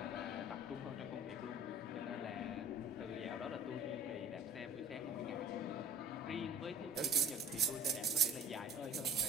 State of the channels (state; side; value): normal; both; correlation 0.49